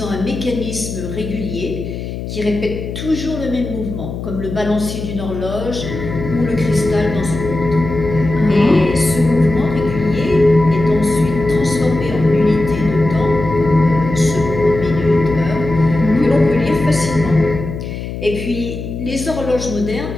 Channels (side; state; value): left; noise; hum, 7 dB below the sound